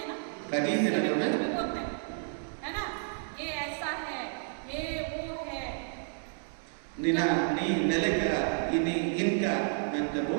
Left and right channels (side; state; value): left; silent; digital silence